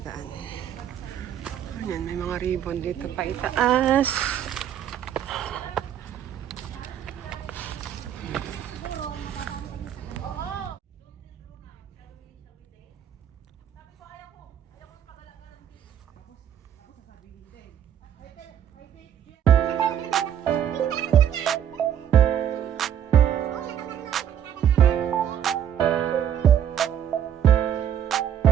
Ayan, may mga ribbon dito pa itaas.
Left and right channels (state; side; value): quieter; left; 9.6 dB